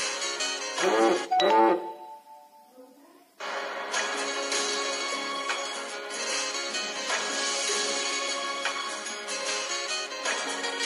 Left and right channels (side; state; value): both; identical; correlation 1.00